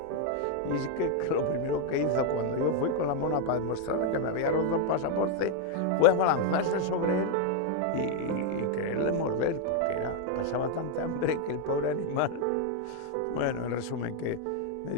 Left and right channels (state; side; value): different; both; correlation 0.01